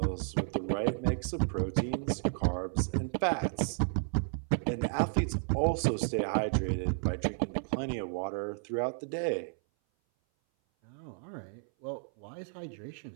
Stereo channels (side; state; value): left; silent; 56 dB below the other